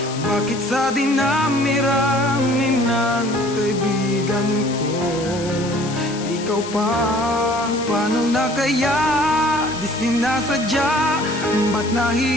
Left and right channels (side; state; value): left; noise; hiss, 13 dB below the sound